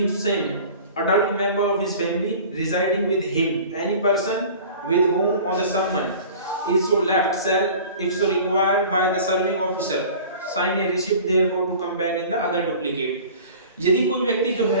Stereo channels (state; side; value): inverted; both; correlation -0.43